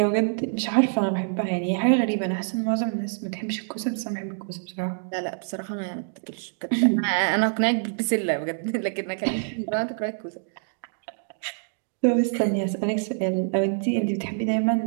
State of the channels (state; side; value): silent; left; digital silence